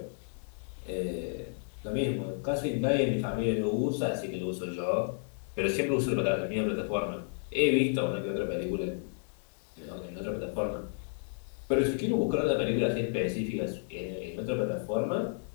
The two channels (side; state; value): right; silent; digital silence